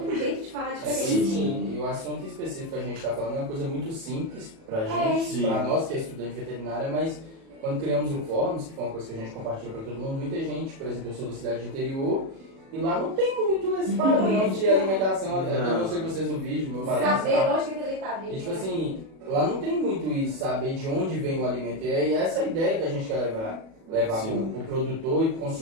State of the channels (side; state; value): left; late; 37 ms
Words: um jeito de falar diferente. Sim, e o assunto específico que a gente está falando é uma coisa muito simples pra gente, Sim. pra nós que é estudante de veterinária, mas quando criamos o Fórum, que foi uma coisa que a gente compartilhou para todo mundo, muita gente, por exemplo, eu sou da cidade de interior, e lá não tem muito esse padrão de alimentação, eu não sei que vocês no vídeo, meu padrão. Saber onde que aquele tá vindo. E tipo assim, lá não tem muito isso, saber de onde vem o alimento, e essa é a ideia que a gente quer levar pro produtor e pro